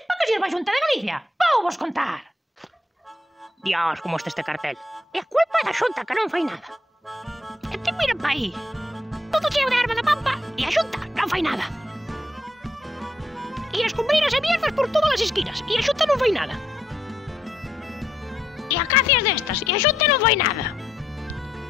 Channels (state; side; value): normal; both; correlation 0.77